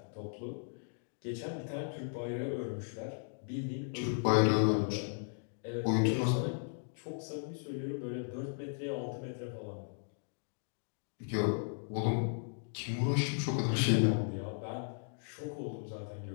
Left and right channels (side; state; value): right; silent; digital silence